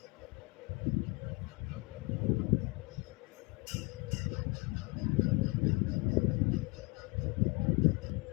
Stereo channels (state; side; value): quieter; right; 27.4 dB